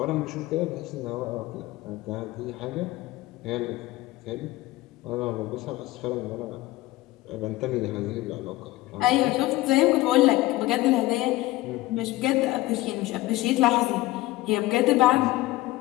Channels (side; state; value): right; quieter; 18.1 dB